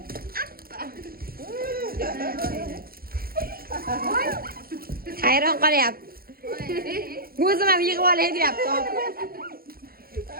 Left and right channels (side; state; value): left; late; 0.43 ms